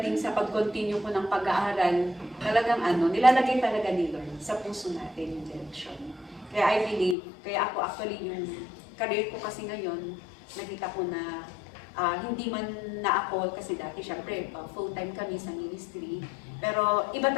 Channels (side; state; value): right; drops out; at 7.2 s